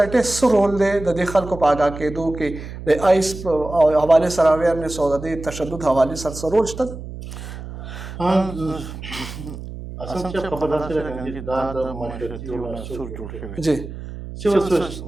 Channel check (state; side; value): noise; right; hum, 11 dB below the sound